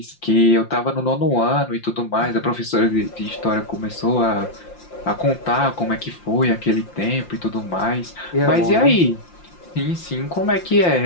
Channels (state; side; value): late; right; 5.7 ms